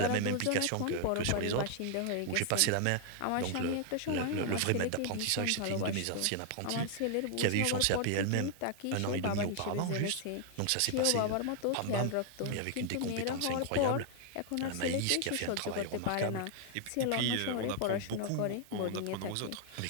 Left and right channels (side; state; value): both; different; correlation 0.00